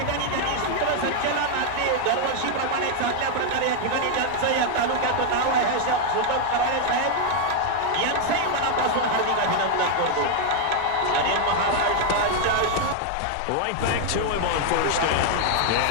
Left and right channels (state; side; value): different; both; correlation 0.00